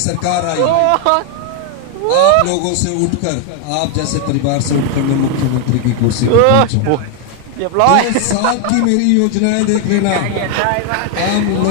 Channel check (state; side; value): different; both; correlation 0.00